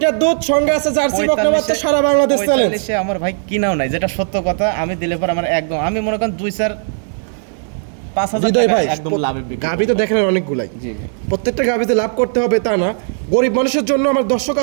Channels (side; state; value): left; silent; 63 dB below the other